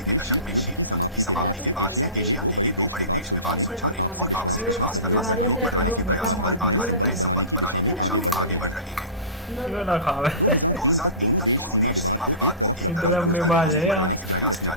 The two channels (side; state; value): both; inverted; correlation -0.32